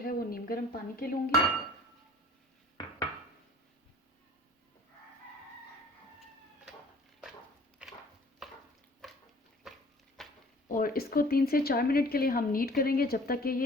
वो नीम गर्म पानी के लूँगी। और इसको 3 से 4 मिनट के लिए हम नीड करेंगे जब तक कि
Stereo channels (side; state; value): both; normal; correlation 0.50